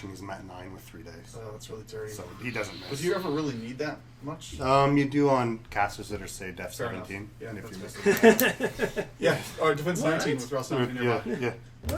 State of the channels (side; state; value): both; identical; correlation 1.00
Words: he's Mat 9 with 3 days. that's really dirty. So he doesn't But miss. do you ever really need that much? You do on casters that are, say, Def Fair enough. 17. Yeah, and if you that's miss fair. Yeah, or defense What? 19 with Rocinante yeah, nearby. yeah.